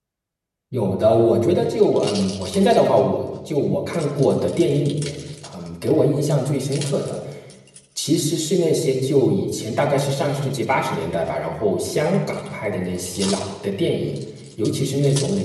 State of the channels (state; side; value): identical; both; correlation 1.00